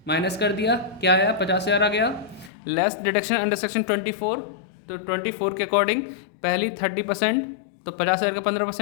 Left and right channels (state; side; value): drops out; right; at 2.5 s